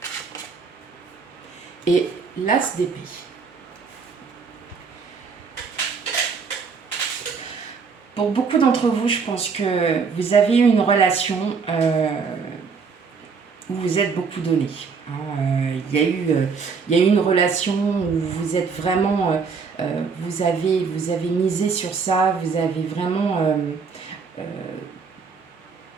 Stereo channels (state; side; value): quieter; left; 5.3 dB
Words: et l'as d'épée. Pour beaucoup d'entre vous, je pense que vous avez eu une relation où vous êtes beaucoup donné. Il y a eu une relation où vous êtes vraiment, vous avez misé sur ça, vous avez vraiment,